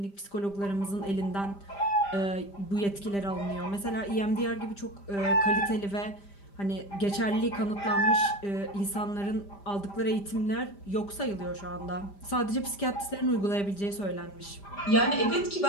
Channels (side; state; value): right; late; 5.0 ms